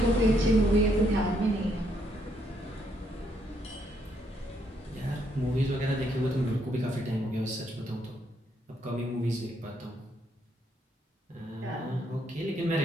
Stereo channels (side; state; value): both; normal; correlation 0.73